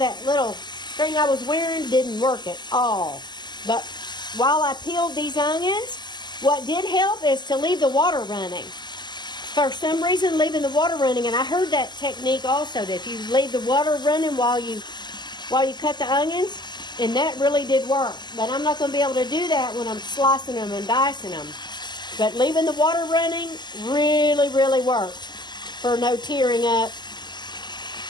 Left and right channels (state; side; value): late; right; 0.21 ms